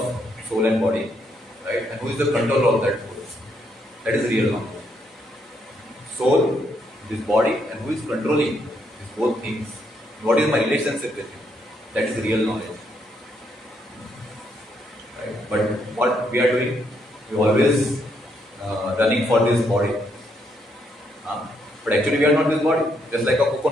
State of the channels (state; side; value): normal; both; correlation 0.75